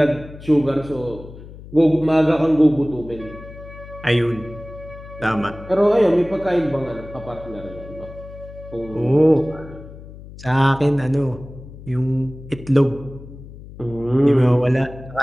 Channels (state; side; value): noise; left; hum, 16 dB below the sound